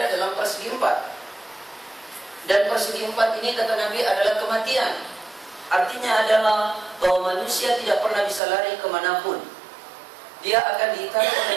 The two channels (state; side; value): drops out; left; at 8.4 s